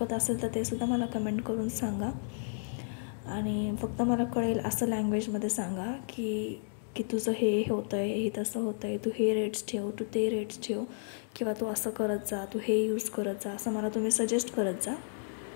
असेल तर ते सुद्धा मला कमेंट करून सांगा. आणि फक्त मला कळेल असं लँग्वेजमध्ये सांगा की की तुझं हे होतं आहे, हे तसं होतं आहे, तू हे रेट्स ठेव, तू ते रेट्स ठेव, किंवा तू असं करत जा, तू हे यूज करत जा, असं मला तुम्ही सजेस्ट करत जा.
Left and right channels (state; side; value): silent; right; digital silence